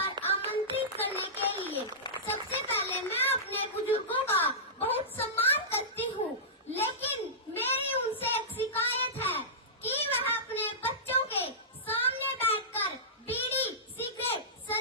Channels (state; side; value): normal; both; correlation -0.17